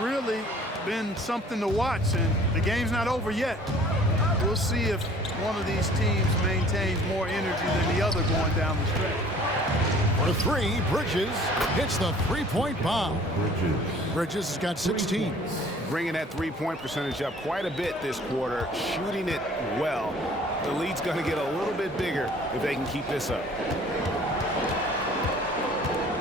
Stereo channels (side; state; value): both; normal; correlation 0.52